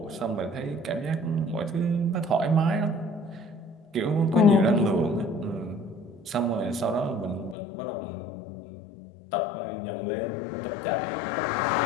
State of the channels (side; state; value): right; drops out; at 7.6 s